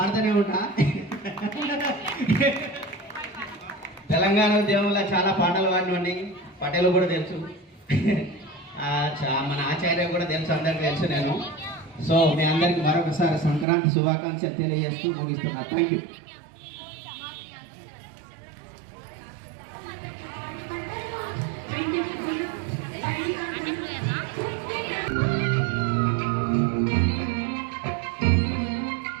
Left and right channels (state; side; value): drops out; left; at 13.7 s